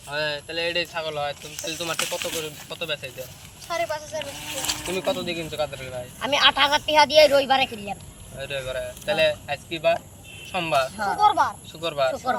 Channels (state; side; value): identical; both; correlation 1.00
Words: হয় তাহলে এটাই ছাগল হয় তাহলে তোমার কত করে কত বেচাইতে 5.5 তুমি কত দিয়ে কিনছো কাদের লি ভাই আমি 8000 টাকা দিয়ে রবিবারে কিনলাম এটাই করে তাহলে আজকে বার সোমবার শুক্রবার